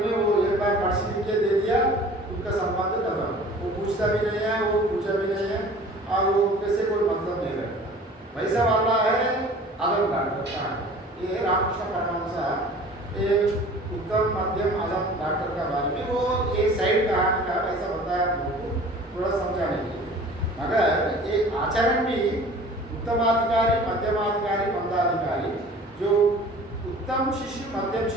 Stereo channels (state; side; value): normal; both; correlation 0.45